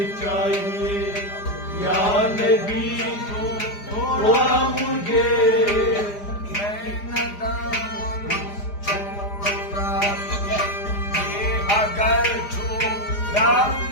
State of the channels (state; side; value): late; right; 4.9 ms